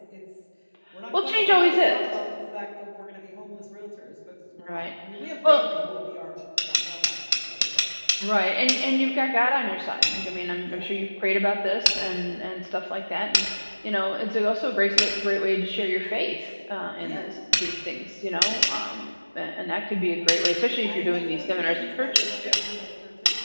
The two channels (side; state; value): both; inverted; correlation -1.00